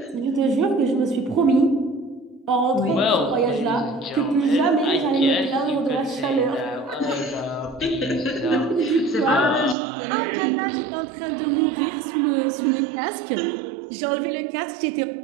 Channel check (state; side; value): drops out; left; at 9.8 s